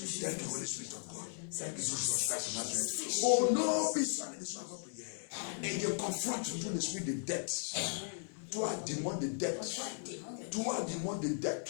Thank you, Holy Spirit of God. Thank you, Jesus Christ of Nazareth. Oh no, be silent, this one up here. And you confront through the Spirit the depths. Toi, démon de dette. Toi, démon de dette.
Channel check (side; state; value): right; silent; digital silence